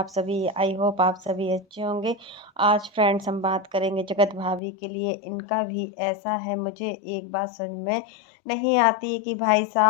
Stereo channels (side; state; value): right; drops out; at 4.6 s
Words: सभी? आई होप आप सभी अच्छे होंगे। आज फ्रेंड्स हम बात करेंगे जगत भाभी के लिए। इनका भी ऐसा है, मुझे एक बात समझ में नहीं आती है कि भाई